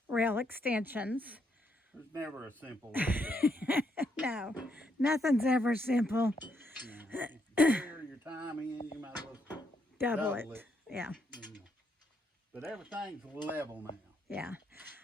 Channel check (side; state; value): both; normal; correlation 0.75